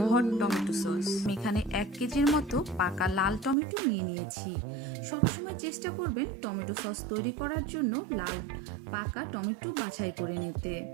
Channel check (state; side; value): drops out; left; at 3.6 s